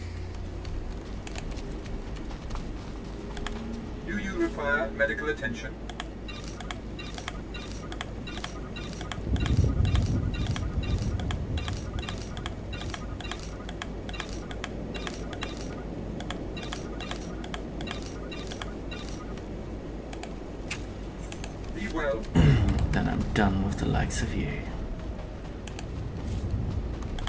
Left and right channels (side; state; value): both; identical; correlation 1.00